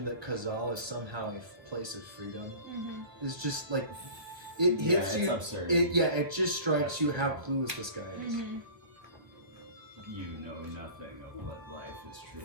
that Kazal is somehow a place of freedom is just it hits it's you. absurd. It just strikes you how clueless this guy is. You know nothing of what life is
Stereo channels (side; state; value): left; late; 1.3 ms